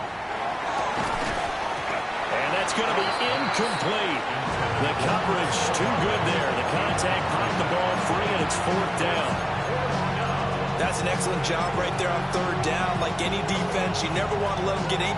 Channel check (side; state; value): both; identical; correlation 1.00